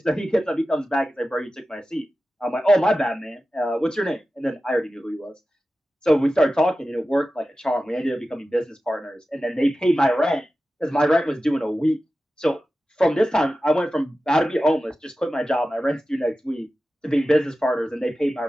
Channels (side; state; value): both; normal; correlation 0.94